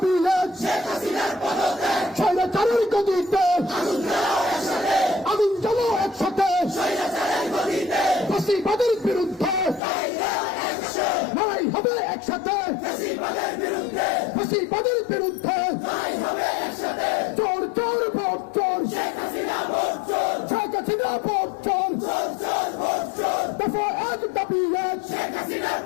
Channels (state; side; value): drops out; right; at 9.8 s